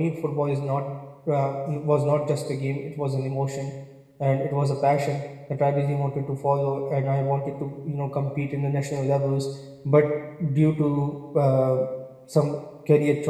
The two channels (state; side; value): identical; both; correlation 1.00